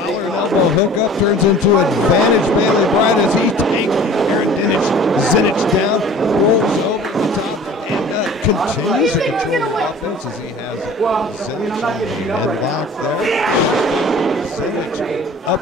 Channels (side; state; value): both; normal; correlation 0.45